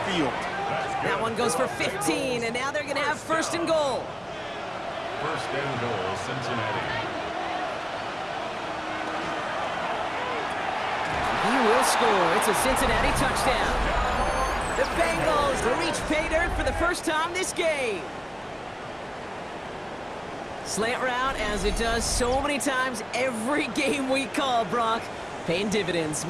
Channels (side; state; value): both; identical; correlation 1.00